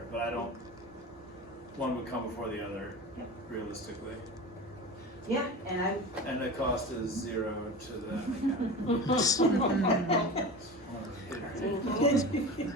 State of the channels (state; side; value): normal; both; correlation 0.31